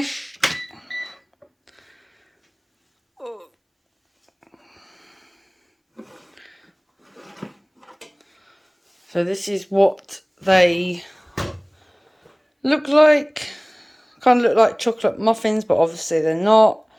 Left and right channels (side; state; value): both; identical; correlation 1.00